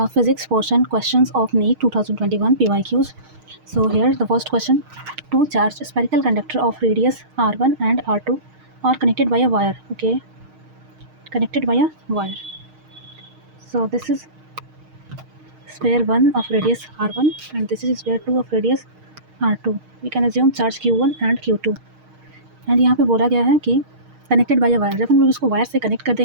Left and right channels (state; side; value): late; left; 6.5 ms